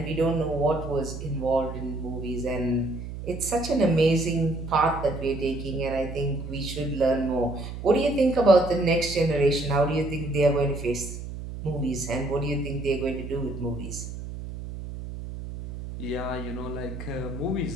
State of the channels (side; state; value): right; noise; hum, 9 dB below the sound